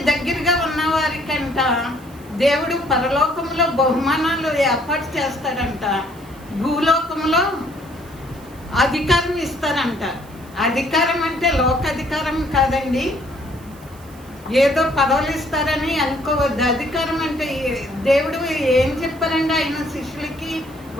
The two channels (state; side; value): noise; right; hiss, 25 dB below the sound